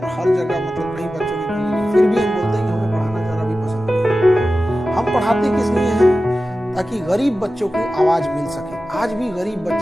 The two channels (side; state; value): both; normal; correlation 0.94